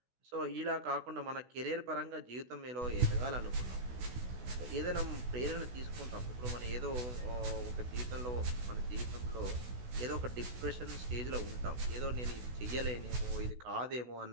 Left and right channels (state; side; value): late; left; 16 ms